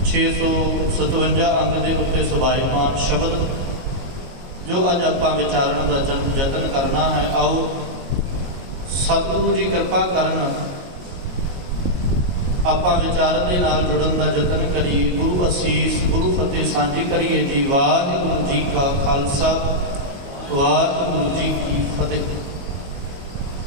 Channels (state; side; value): late; left; 22 ms